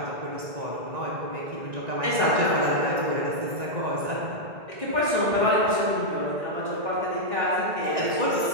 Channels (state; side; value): late; left; 1.9 ms